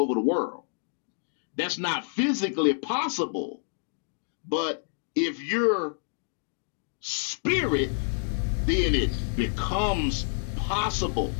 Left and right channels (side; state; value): right; silent; digital silence